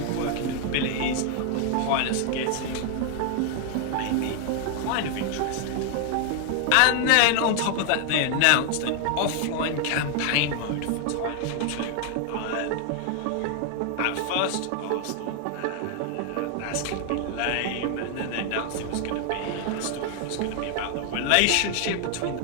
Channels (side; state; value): both; different; correlation 0.00